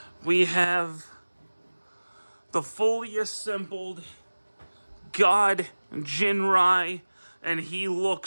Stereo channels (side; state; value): both; inverted; correlation -1.00